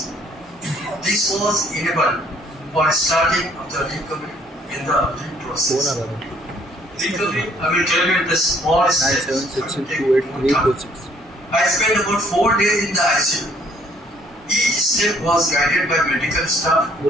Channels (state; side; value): normal; both; correlation 0.63